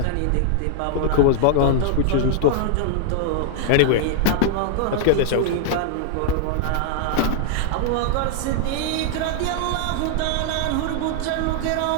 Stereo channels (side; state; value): both; different; correlation -0.01